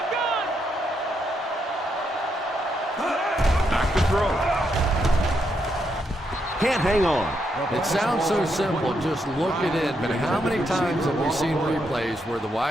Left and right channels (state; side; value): normal; both; correlation 0.79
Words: Back to throw. Can't hang on. It sounds so simple, just look at it, but how many times have we seen replays where the